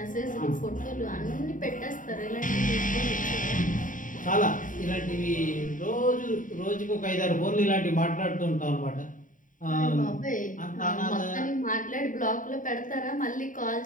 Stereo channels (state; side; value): late; right; 0.38 ms